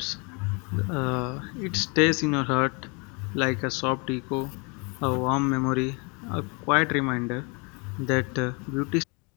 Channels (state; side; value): quieter; right; 31.4 dB